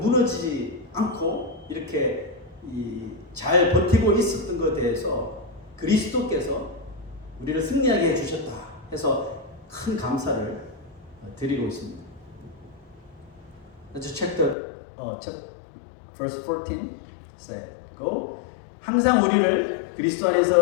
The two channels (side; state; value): right; drops out; at 14.6 s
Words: 않고 이렇게 잘 버티고 있었던 것에 대해서 그리스도께서 우리를 승리하게 해주셨다 해서 큰 감사를 드리고 있습니다. Let's check the verse 14. Say, go. 항상 우리를 그리스도